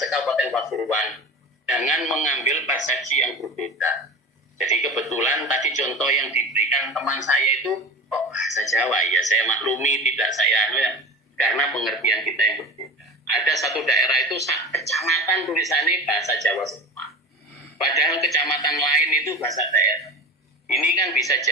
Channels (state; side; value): normal; both; correlation 0.32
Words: Pasuruan, jangan mengambil persepsi yang berbeda. Jadi kebetulan tadi contoh yang diberikan teman saya itu kok bahasa Jawa, ya saya maklumi, tidak saya karena pengertian kita yang berbeda. Ada satu daerah itu kecamatan tulisannya bahasa Jawa semua, padahal kecamatan lain itu bahasa daerah. Ini kan bisa